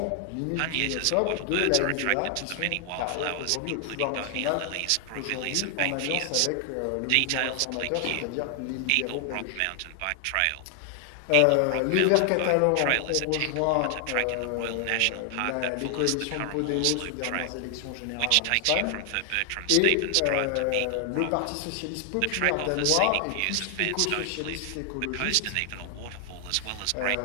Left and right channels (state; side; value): different; both; correlation 0.00